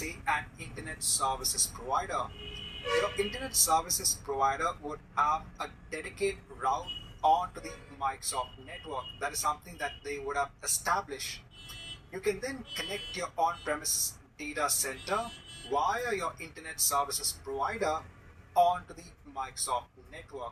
an internet services provider. Your internet services provider would have a dedicated route onto the Microsoft network. That is something that they would have established. You can then connect your on-premises data center via your internet services provider onto the Microsoft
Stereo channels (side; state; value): both; identical; correlation 1.00